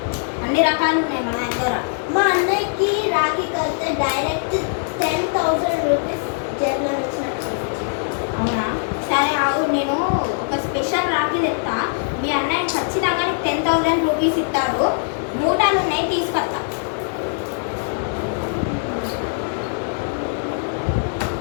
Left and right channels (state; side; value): silent; right; 61 dB below the other